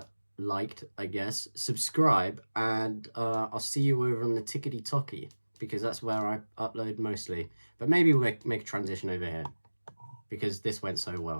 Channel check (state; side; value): inverted; both; correlation -1.00